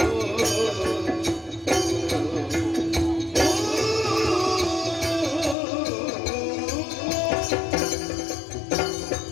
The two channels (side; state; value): right; drops out; at 5.6 s